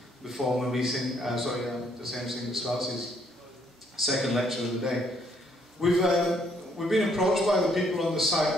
before my meeting. The same thing that starts his second lecture of the day. We've been approached by the people on the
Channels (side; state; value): both; normal; correlation 0.68